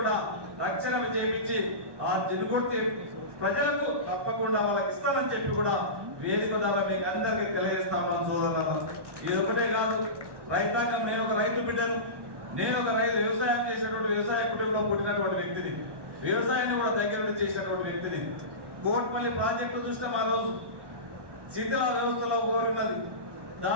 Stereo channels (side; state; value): left; late; 1.1 ms